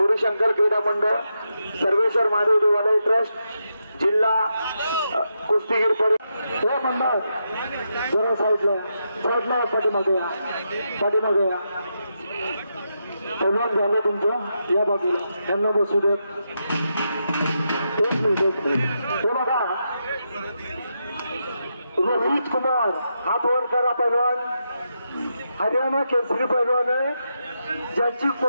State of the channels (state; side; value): inverted; both; correlation -0.84